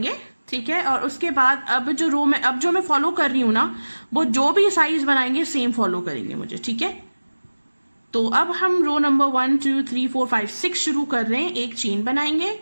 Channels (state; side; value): inverted; both; correlation -1.00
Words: ठीक है। और उसके बाद अब जो मैं फॉलो कर रही हूँ ना, वो जो भी साइज बनाएंगे सेम फॉलो करेंगे मुझे, ठीक है। तो अब हम रो नंबर 1 2 3 4 5 6 शुरू कर रहे हैं। एक चेन बनाएंगे